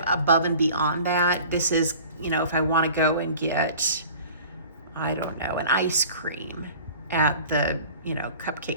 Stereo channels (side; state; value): both; inverted; correlation -0.44